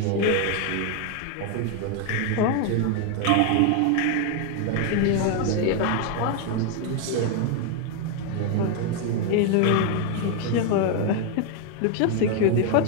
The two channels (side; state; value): both; different; correlation 0.01